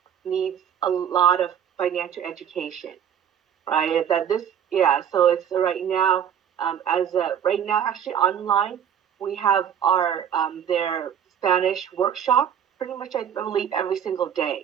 needs a lot of financial education, right? That this, yeah. So it's right now, right now, actually online, we have our their Spanish workshop pretty much, I believe, every single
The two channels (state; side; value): quieter; left; 8.8 dB